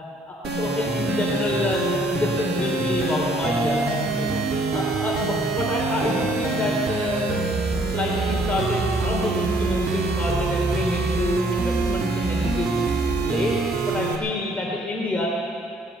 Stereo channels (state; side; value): normal; both; correlation 0.63